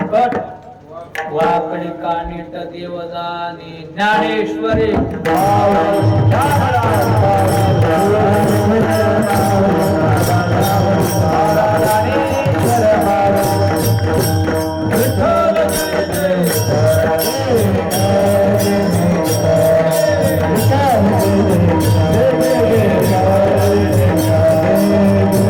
वाकडी कानिट देवदानी ज्ञानेश्वरी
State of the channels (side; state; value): both; identical; correlation 1.00